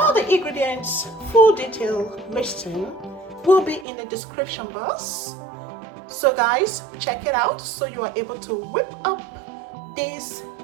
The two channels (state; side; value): drops out; left; at 3.9 s